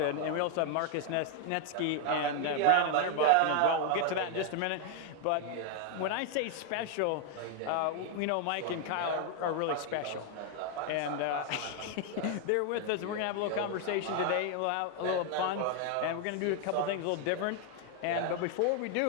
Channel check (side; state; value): both; different; correlation 0.00